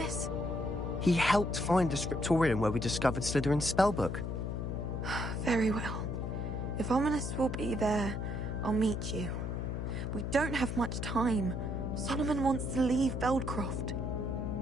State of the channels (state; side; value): noise; left; hum, 3 dB below the sound